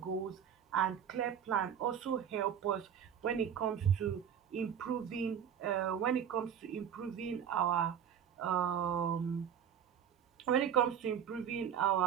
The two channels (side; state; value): left; quieter; 8.5 dB